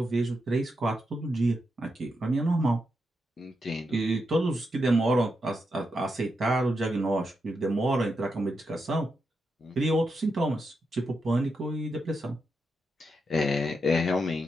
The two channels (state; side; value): normal; both; correlation 0.85